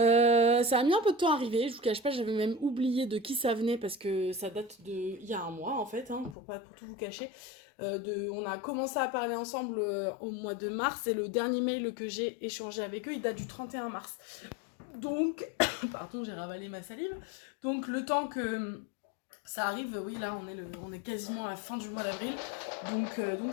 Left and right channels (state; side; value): drops out; right; at 6.4 s